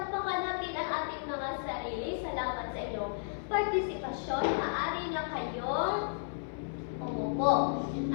natin ang ating mga sarili. Salamat sa inyong partisipasyon. Maaari na kayong umupo.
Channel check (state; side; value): silent; right; 55 dB below the other